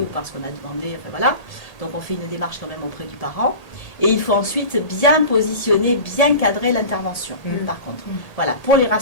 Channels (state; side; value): late; right; 1.8 ms